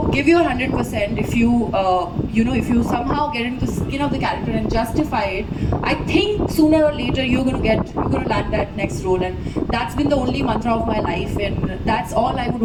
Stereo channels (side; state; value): both; identical; correlation 1.00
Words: give your 100%, if you if you somehow get into the skin of the character and justify it, I think sooner or later you're gonna land that next role, and that's been the only mantra of my life, and that's all I would